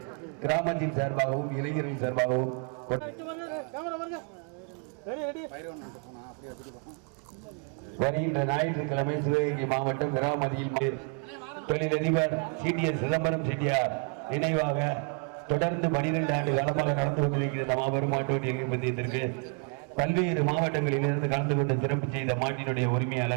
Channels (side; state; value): left; quieter; 36.0 dB